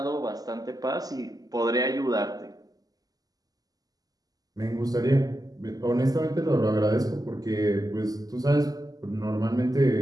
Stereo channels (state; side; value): late; left; 0.18 ms